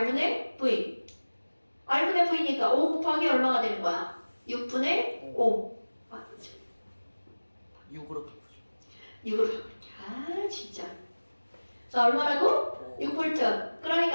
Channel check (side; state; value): both; inverted; correlation -1.00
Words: V. R분의 V니까 5 곱하기 얼마가 되는 거야? 6분의 5. 아, 6으로 바꾸죠. 6으로 바꿀게. 진짜. 자 얼마라고? 6V.